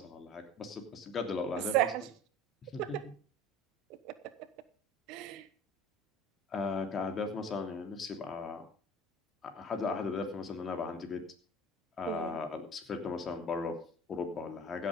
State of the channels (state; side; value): normal; both; correlation 0.40